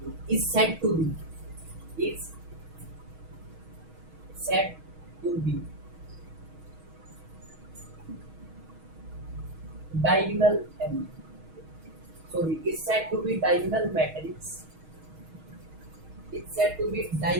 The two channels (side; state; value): left; late; 6.3 ms